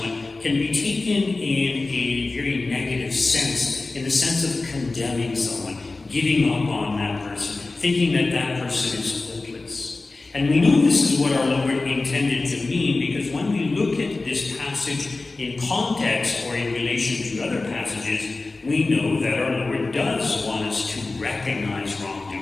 can be taken in a very negative sense, in the sense of condemning someone, giving up on that person, thinking that that person is hopeless. And we know this is what our Lord intended to mean, because when we look at this passage in context or in relation to other passages, we know that our Lord does want us to recognize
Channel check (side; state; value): right; quieter; 3.4 dB